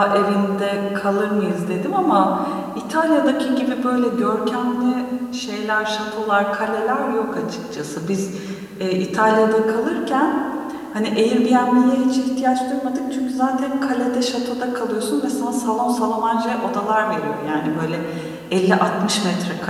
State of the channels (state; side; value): identical; both; correlation 1.00